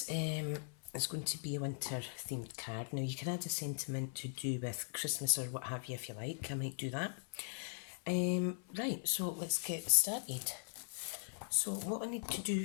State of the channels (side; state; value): right; silent; 51 dB below the other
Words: is going to be a winter themed card. Now you can add a sentiment to do with Christmas or what have you if you like. I might do that. Right, so let's get started. So what I need to